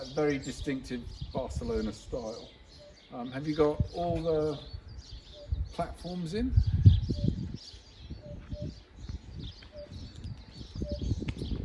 Very distinctive Barcelona style. Have you got all the platforms in?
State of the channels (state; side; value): identical; both; correlation 1.00